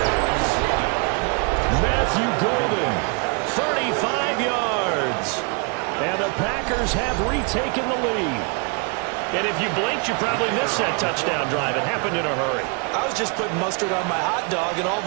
Matthew Golden, 35 yards. And the Packers have retaken the lead. And if you blinked, you probably missed that touchdown drive. It happened in a hurry. I was just putting mustard on my hot dog, and all of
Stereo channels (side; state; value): left; quieter; 34.6 dB